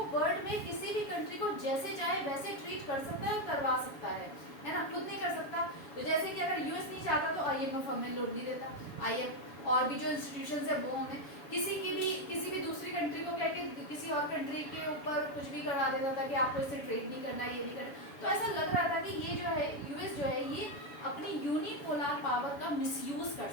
वर्ल्ड में किसी भी कंट्री को जैसे चाहे वैसे ट्रीट कर सकता है और करवा सकता है ना, खुद नहीं कर सकता। तो जैसे कि अगर US नहीं चाहता तो IMF हमें लोन नहीं देता, IMF और भी जो इंस्टीट्यूशन है वो हमें किसी भी दूसरी कंट्री को कहके किसी और कंट्री के ऊपर कुछ भी करवा देता था कि आपको इससे ट्रेड नहीं करना, ये नहीं करना। तो ऐसा लग रहा था कि ये जो है US जो है ये अपनी यूनिपोलर पावर का मिसयूज कर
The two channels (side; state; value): right; late; 7.1 ms